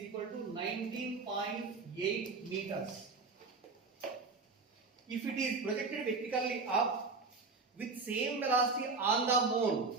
equal to 19.8 meters. If it is projected vertically up with same velocity on the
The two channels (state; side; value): quieter; left; 4.2 dB